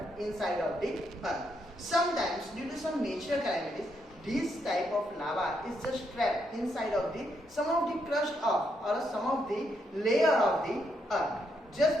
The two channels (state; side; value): normal; both; correlation 0.78